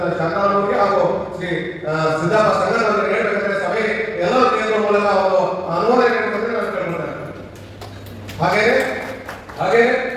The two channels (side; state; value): both; identical; correlation 1.00